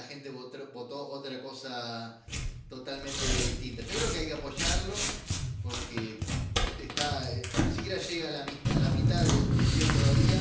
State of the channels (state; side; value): identical; both; correlation 1.00